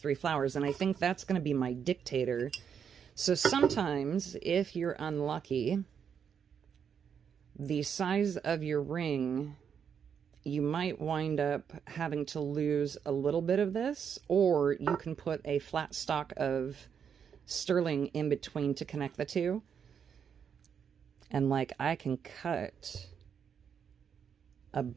flowers, and I think that's going to be my dictator So sometimes, if you're unlucky, the size of your ring, you might wind up having to lose a little bit of this, or you can put a flat stock of sterling in between to connect the two. And like, I can cut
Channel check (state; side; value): quieter; left; 7.4 dB